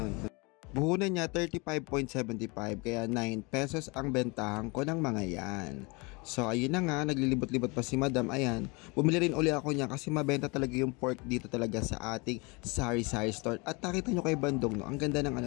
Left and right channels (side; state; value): right; quieter; 28.2 dB